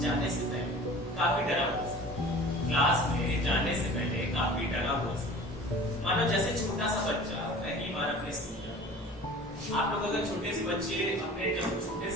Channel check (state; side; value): normal; both; correlation 0.42